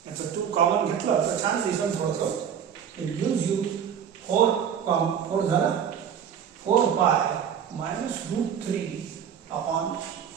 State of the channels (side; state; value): left; quieter; 8.3 dB